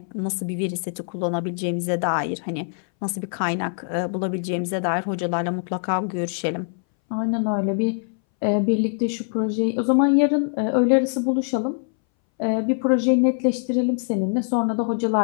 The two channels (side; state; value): right; silent; 61 dB below the other